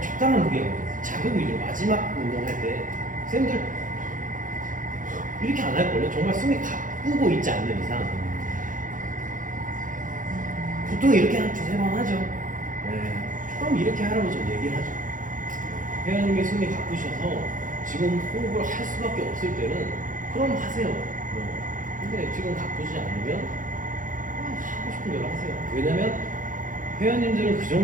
적당한 무게거든요. 자극 위주로 마지막 운동할 때 쌤들 이렇게 안 할걸요? 정말 숨이 가쁘고 있지 않는 이상 보통 이렇게 한 두세 번 하죠. 네. 그럼 이렇게 하라고 좀 얘기를 하죠. 회원님의 숨이 가쁘셔서 지금 호흡을 할 수밖에 없을 때는 그럼 하세요. 근데 지금 가쁘지 않으면 하고 싶은 대로 하세요. 왜냐면 회원님들은 그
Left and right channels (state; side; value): late; left; 0.38 ms